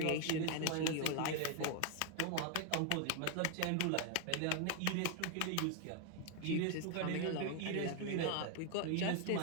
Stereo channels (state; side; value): different; both; correlation 0.01